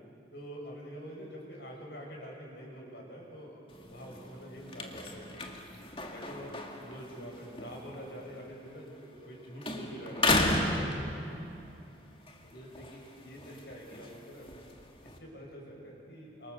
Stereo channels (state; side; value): normal; both; correlation 0.24